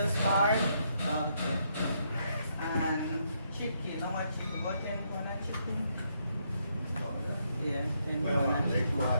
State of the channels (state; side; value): inverted; both; correlation -0.75